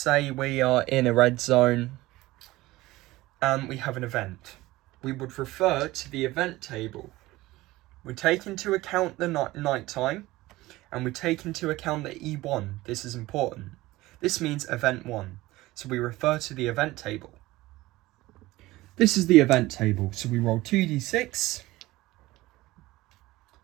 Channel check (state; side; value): quieter; left; 18.5 dB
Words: we are in a red zone and we have an event. We would refer to the event table. We take into account the night time, and we take into account the E1. This is important. This means event 1. So we refer to the event table. This is the event table. So we roll 2d6,